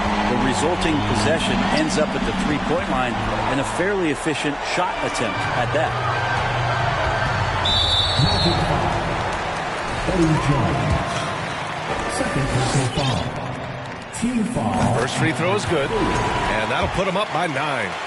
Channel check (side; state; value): both; identical; correlation 1.00